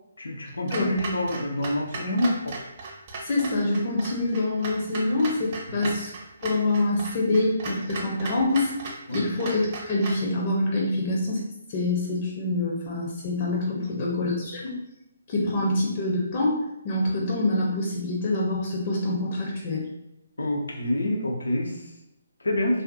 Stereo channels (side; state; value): both; inverted; correlation -0.71